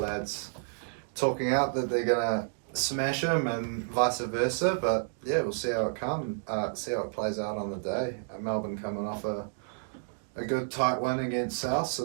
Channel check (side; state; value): left; silent; digital silence